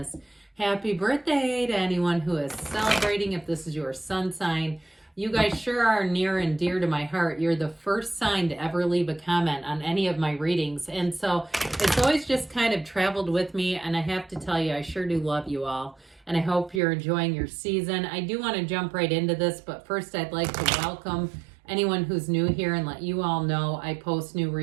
Happy birthday to anyone who is celebrating. If this is your sun sign, you guys sure are near and dear to my heart. You're the first sign to ever leave a comment on any of my readings. And so it's always just kind of traveled with me. And I have to tell you, I sure do love you all. And I hope you're enjoying your season. I do want to jump right into this, but first I'd like to welcome anyone who's new here and let you all know I post new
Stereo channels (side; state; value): left; drops out; at 16.8 s